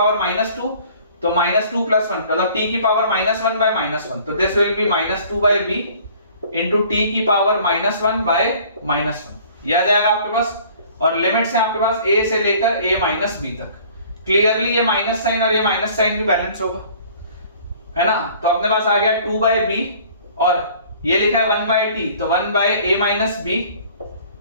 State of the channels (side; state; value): both; inverted; correlation -0.52